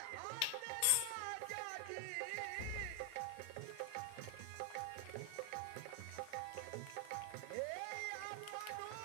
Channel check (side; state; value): both; different; correlation 0.00